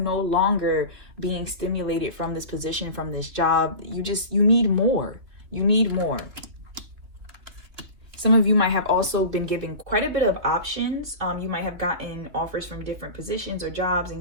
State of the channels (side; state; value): left; late; 3.2 ms